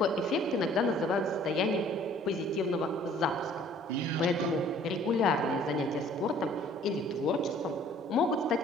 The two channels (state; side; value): normal; both; correlation 0.55